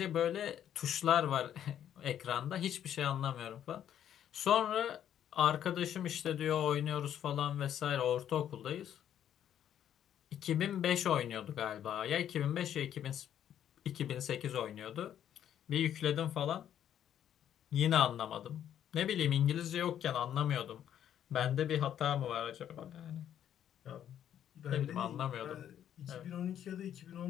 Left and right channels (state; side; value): quieter; right; 10.2 dB